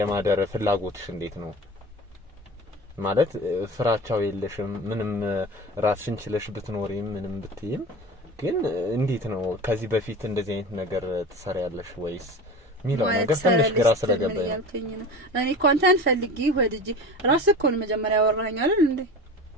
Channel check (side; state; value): both; normal; correlation 0.34